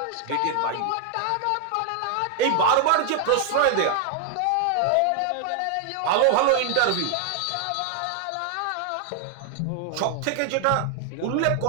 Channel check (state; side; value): different; both; correlation 0.00